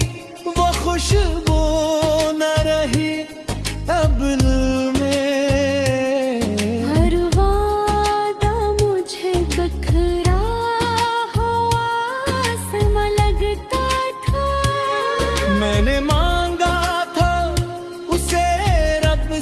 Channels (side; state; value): both; identical; correlation 1.00